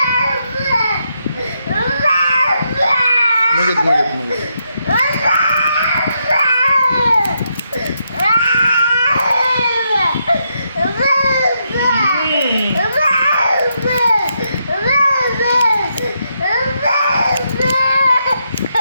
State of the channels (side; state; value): both; inverted; correlation -0.80